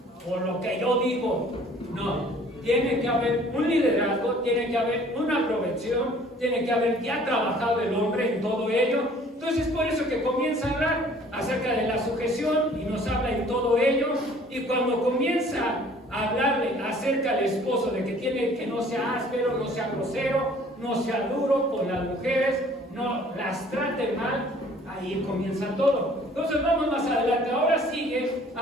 Por lo que yo digo. No, tiene que haber un liderazgo, tiene que haber una provección, tiene que haber ya trabajado el hombre en todo ello. Entonces por eso que comienza a hablar acerca de la sujeción y nos habla en todo ello. Y cuando comienza a hablarle acerca del esposo, de que tiene que no sea áspero, no sea grosero, no sea duro con las mujeres, no las trate mal, ahí comienza todo. Entonces vamos más adelante. Ahora sigue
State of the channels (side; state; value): both; normal; correlation 0.54